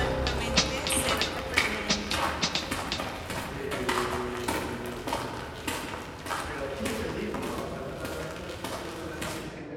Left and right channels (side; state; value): both; identical; correlation 1.00